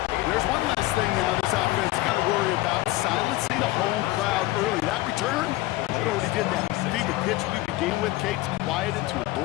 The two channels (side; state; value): right; quieter; 18.0 dB